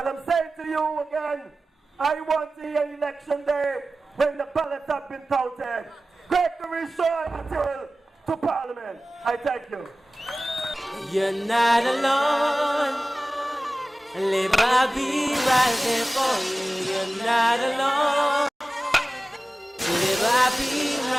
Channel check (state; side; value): normal; both; correlation 0.96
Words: I'm saying to you again, I want to hear election day when the ballots have been counted. GregoryAthill to Parliament. I thank you. You're not alone. I'll be right there for you. You're not alone. I'll be